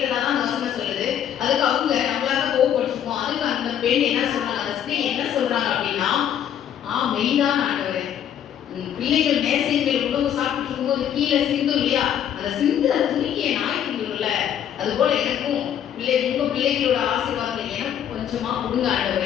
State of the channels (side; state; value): right; quieter; 9.7 dB